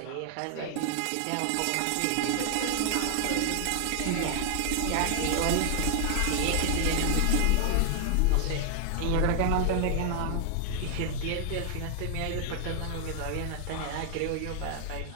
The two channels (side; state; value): both; different; correlation 0.00